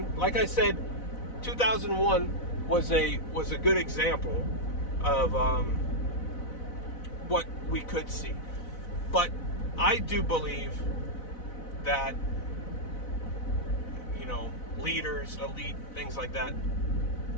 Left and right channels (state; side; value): late; right; 4.0 ms